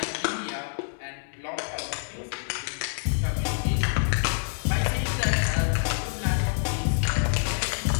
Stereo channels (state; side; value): silent; right; 60 dB below the other